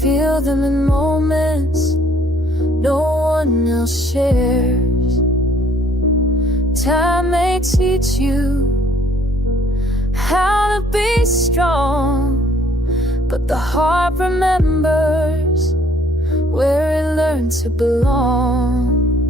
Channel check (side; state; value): both; normal; correlation 0.61